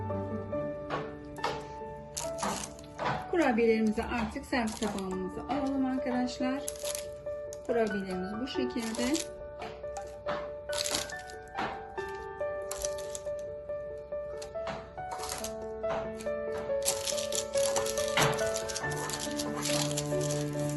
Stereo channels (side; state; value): both; identical; correlation 1.00